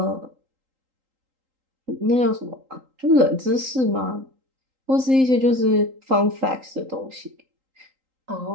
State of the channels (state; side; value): late; left; 3.8 ms